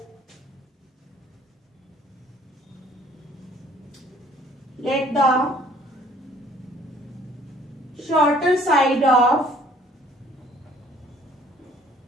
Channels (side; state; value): both; normal; correlation 0.57